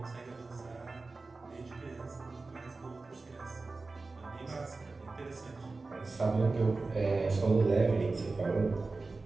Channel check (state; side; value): quieter; left; 3.7 dB